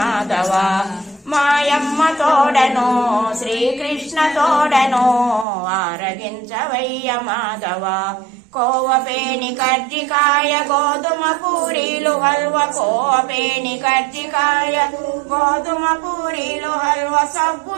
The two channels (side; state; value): left; drops out; at 5.5 s